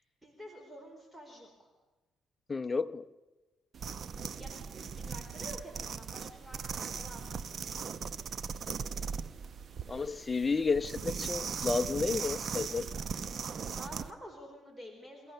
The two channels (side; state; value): both; normal; correlation 0.82